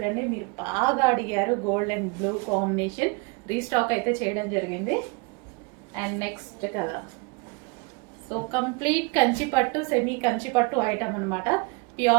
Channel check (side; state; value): left; quieter; 29.1 dB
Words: మీరు బాగా అడిగారు, gold and blue combination restock అయితే చేయడం జరిగింది. And next colour, so complete Kanchi పట్టు సెమీ కంచి పట్టు ఐటమ్ అనమాట.